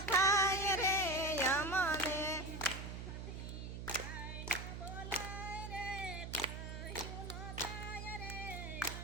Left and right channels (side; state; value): right; noise; hum, 7 dB below the sound